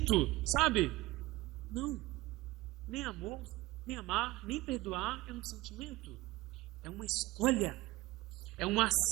sabe? Não. Nem amor, nem amar, nem perdoar é um sentimento. É uma escolha. É uma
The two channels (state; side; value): quieter; left; 18.9 dB